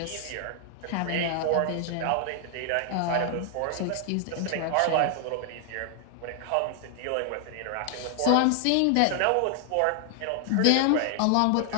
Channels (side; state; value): both; different; correlation 0.00